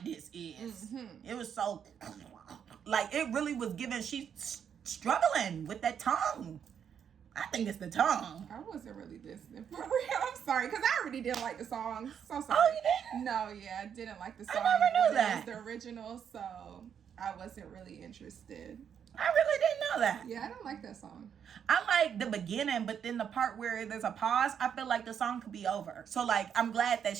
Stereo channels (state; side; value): quieter; left; 8.0 dB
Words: this is. Mm-hmm. It was so, like, it really was giving, she's struggling with that tongue. I think it's the tongue. I wasn't really listening for real. I'm sorry, because I already didn't like the song. So sorry. Oh, you didn't? No, yeah, I didn't like the song. I never knew that. It was the original, so I wasn't really interested. I really didn't know that. Yeah, I don't like that song. I like the beginning, but then the part where there's a pause, I feel like the song could be over. So, like, I'm glad that